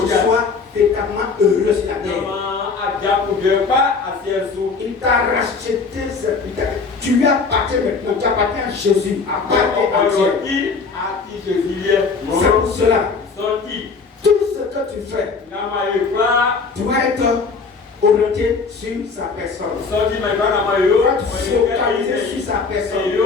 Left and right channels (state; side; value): quieter; right; 4.7 dB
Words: tu sois véritablement heureux sur la terre. Il t'a racheté, tu lui appartiens maintenant, tu appartiens à Jésus, appartiens à Dieu. C'est pour cela, tout ce que tu fais doit être orienté sur sa personne. Tu vas te focaliser sur sa personne.